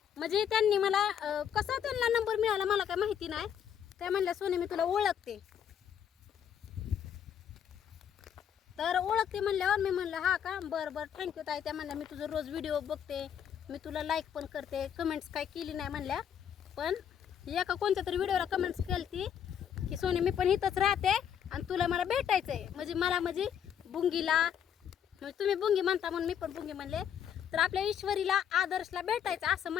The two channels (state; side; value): quieter; right; 8.8 dB